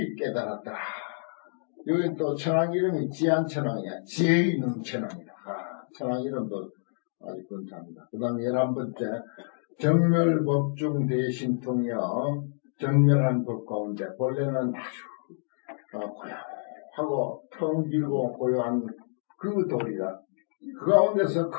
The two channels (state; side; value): silent; right; digital silence